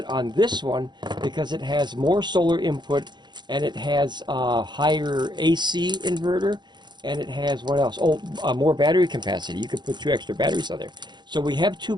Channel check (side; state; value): left; late; 0.21 ms